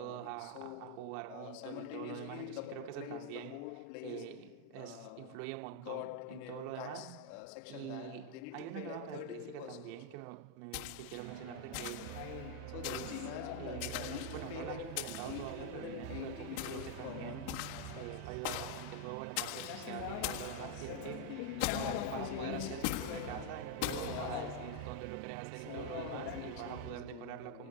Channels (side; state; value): both; different; correlation 0.00